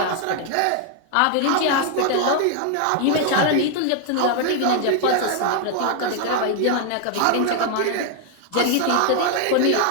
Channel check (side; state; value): both; different; correlation 0.00